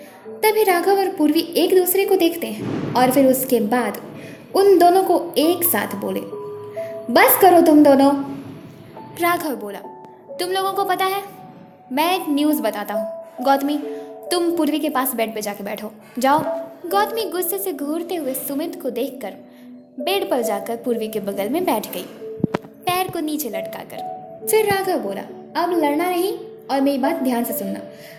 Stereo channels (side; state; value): both; identical; correlation 1.00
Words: तभी राघव और पूर्वी एक दूसरे को देखते हैं और फिर उसके बाद उन दोनों को एक साथ बोले, बस करो तुम दोनों। राघव बोला, तुम लोगों को पता है, मैं एक न्यूज़ बताता हूँ, गौतमी तुम पूर्वी के पास बेड पे जाके बैठो, जाओ। गौतमी गुस्से से घूरते हुए सुमित को देखकर बेड पर जाकर पूर्वी के बगल में बैठ गई, पैर को नीचे लटकाकर। फिर राघव बोला, अब लड़ना नहीं और मेरी बात ध्यान से सुनना,